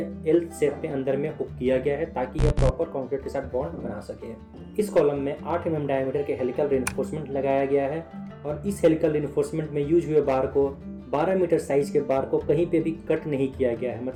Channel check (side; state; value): both; identical; correlation 1.00